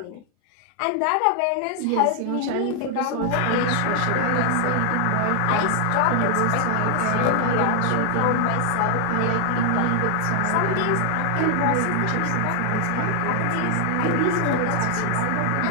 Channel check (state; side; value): different; both; correlation 0.00